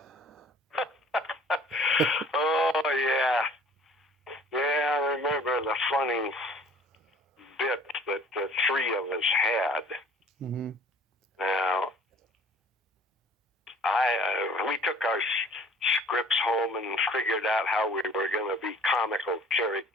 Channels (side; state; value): both; normal; correlation 0.51